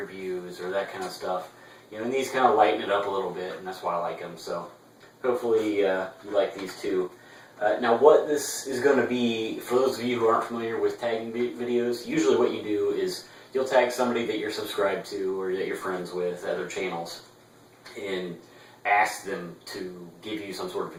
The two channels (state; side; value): identical; both; correlation 1.00